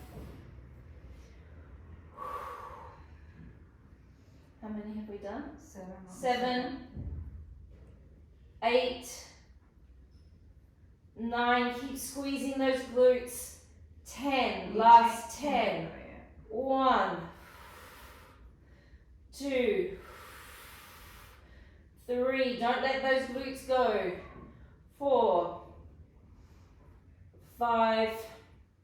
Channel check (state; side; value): identical; both; correlation 1.00